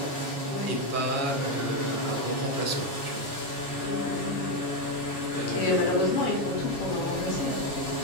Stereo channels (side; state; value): right; late; 7.3 ms